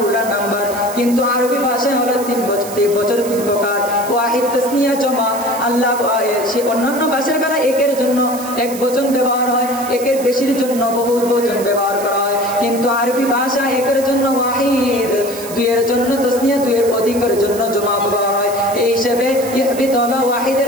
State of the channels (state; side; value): noise; right; hiss, 13 dB below the sound